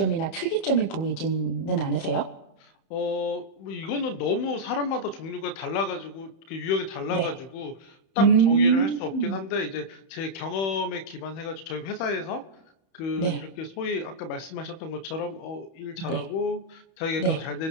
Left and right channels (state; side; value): late; right; 31 ms